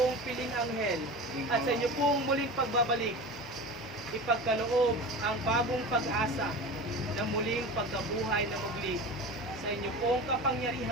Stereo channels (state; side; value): normal; both; correlation 0.31